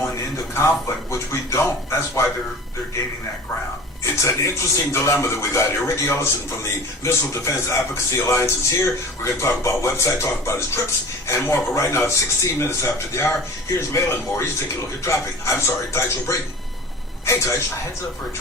into conflict, which we don't. That's why they're gaining that ground. It's an interesting dilemma that we got here. Riki Ellison from the Missile Defense Advocacy Alliance is here. We're going to talk about website, talk about his trips, and more. But right now, it's 16 minutes after the hour. Here's Malin Moore. He's taking a look at traffic. I'm sorry, Tycho Brayton. Hey, Tycho. A heads up for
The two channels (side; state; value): both; normal; correlation 0.39